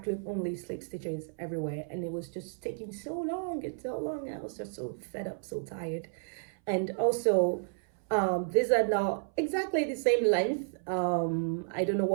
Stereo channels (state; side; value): silent; left; 57 dB below the other